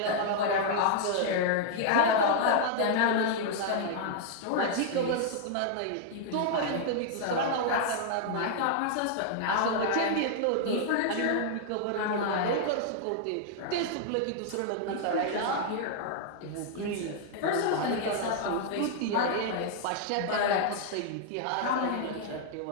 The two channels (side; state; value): both; different; correlation -0.01